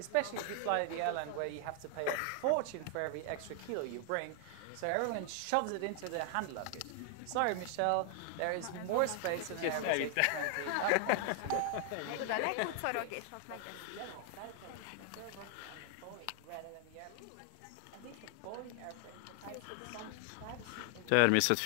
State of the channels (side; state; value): both; different; correlation 0.00